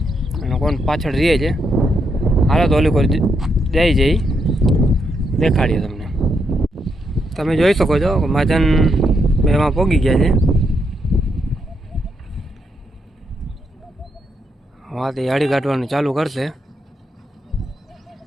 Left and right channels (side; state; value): both; normal; correlation 0.79